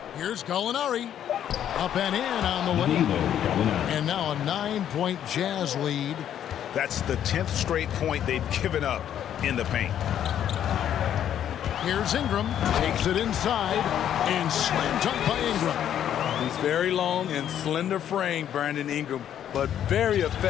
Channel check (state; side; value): quieter; right; 10.2 dB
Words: Here's Gallinari. Up and in on the way. And now a 9-point Jazz lead. That's the 10th straight point they've given up in the paint. Here's Ingram, takes it inside, and slam dunk by Ingram. He's very long and slender frame, Brandon Ingram, but very